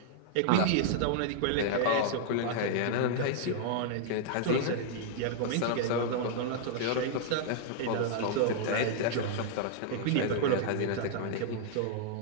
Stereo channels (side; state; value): both; different; correlation -0.01